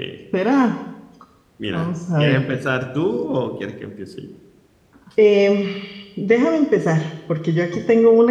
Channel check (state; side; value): identical; both; correlation 1.00